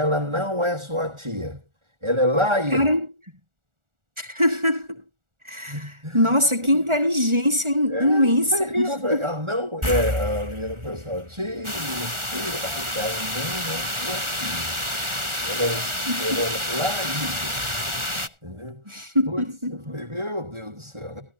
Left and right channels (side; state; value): left; late; 1.4 ms